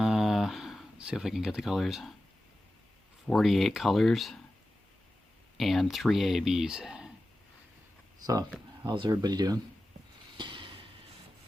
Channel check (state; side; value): normal; both; correlation 0.94